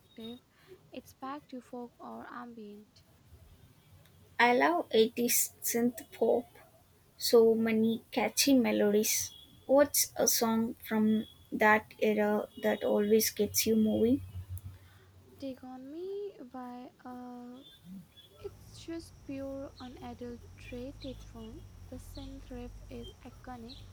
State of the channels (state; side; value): identical; both; correlation 1.00